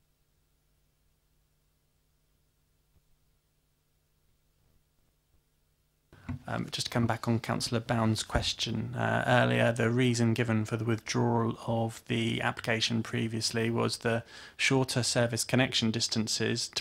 Just to come back on Councillor Bound's question earlier, the reason given for the withdrawal of the application previously was the shorter service connection distances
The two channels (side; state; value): both; identical; correlation 1.00